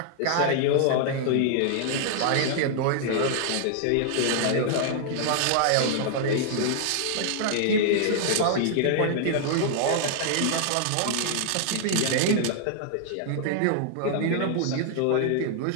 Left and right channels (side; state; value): both; different; correlation -0.01